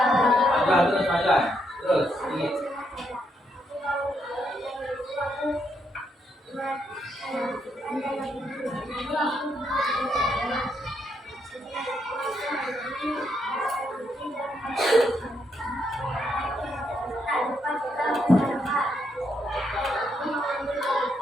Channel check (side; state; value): both; normal; correlation 0.77